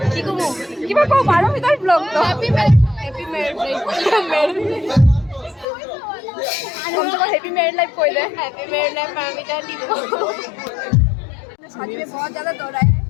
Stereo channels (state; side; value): drops out; right; at 5.7 s